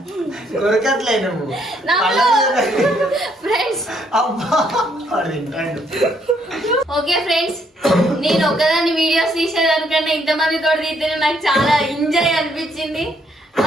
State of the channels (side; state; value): both; normal; correlation 0.71